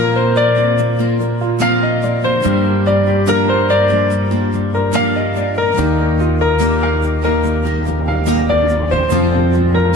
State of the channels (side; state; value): both; normal; correlation 0.53